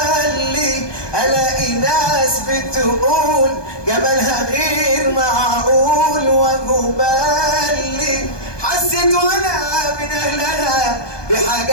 الاقي ناس بتقول جمالها غير معقول وجبالي. حسيت وانا من اهلها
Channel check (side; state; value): right; late; 1.2 ms